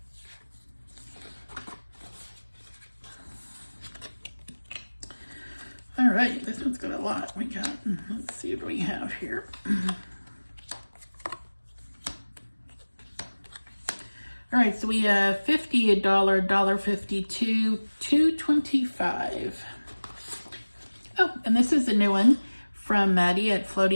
All right, this one's got a lot. We got, let's see what we have here. All right, so we have 50, $1, $1.52, $2.25. Oh, and this is a new one from Maddie at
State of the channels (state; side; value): inverted; both; correlation -1.00